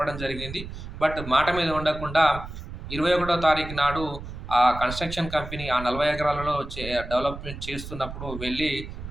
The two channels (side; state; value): right; noise; rumble, 10 dB below the sound